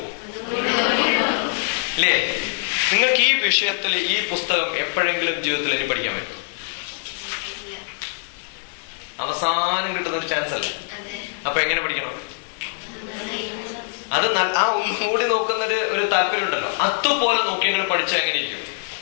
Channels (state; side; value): silent; right; digital silence